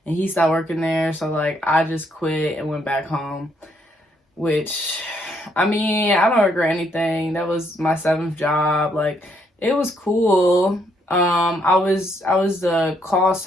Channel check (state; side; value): normal; both; correlation 0.72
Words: and he stopped working there. So like I just quit and went back home, which I mean, I don't regret anything. That was my 7th job. Like it was cool. I was the call